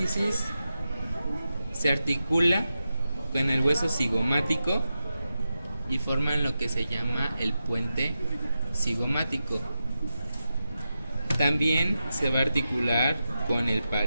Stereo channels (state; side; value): inverted; both; correlation -0.90